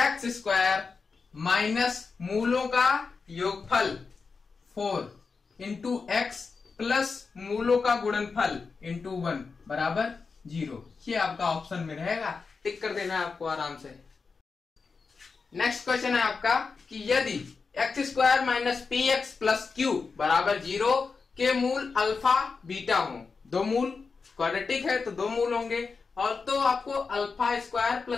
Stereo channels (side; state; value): right; quieter; 4.8 dB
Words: स्क्वायर माइनस मूलों का योगफल 4 इंटू एक्स प्लस मूलों का गुणनफल इंटू 1 बराबर 0। ये आपका ऑप्शन में रहेगा, टिक कर देना है आपको आराम से। नेक्स्ट क्वेश्चन है आपका कि यदि x square minus P x plus Q बराबर 0 के मूल अल्फा बीटा हो, दो मूल क्वाड्रेटिक है तो दो मूल होंगे, और तो आपको alpha square